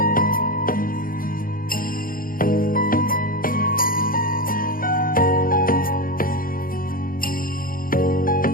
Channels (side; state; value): right; late; 0.41 ms